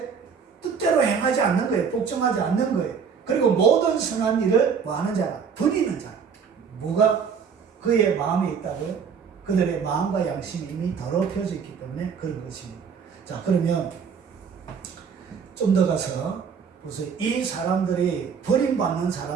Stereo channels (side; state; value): left; quieter; 6.4 dB